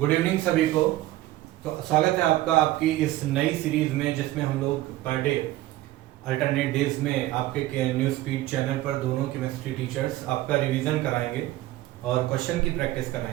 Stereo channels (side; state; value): left; quieter; 16.0 dB